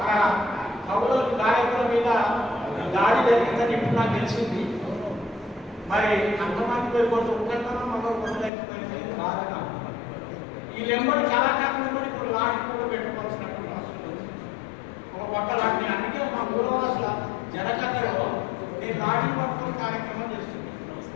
కవుల గాయకుల మీద దాడి జరిగిందని ఇప్పుడు నాకు తెలిసింది. మరి అంతమంది పోయి కొంత ఉత్తరతనం మనం కొట్టలేకపోయింది బాధగా. ఈ లెంబడి కళాకారులు కూడా ఇప్పుడు లాంటి కూడా పెట్టుకోవాల్సినటువంటి అవసరం ఉంది. ఒక పక్క లాంటి అందుకే మా ఊరవాసుల జనకథలో నేను లాఠీ పట్టుకొని కార్యక్రమం చేస్తుంది.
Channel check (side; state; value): right; drops out; at 8.5 s